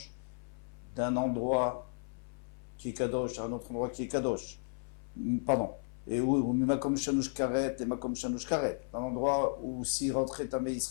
d'un endroit qui est kadosh à un autre endroit qui est kadosh. Pardon. Et où Makom Shanush Karet et Makom Shanush Karet. Un endroit où s'il rentrait tamé,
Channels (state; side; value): silent; right; 55 dB below the other